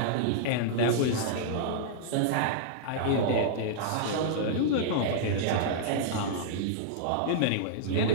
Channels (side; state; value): both; different; correlation -0.02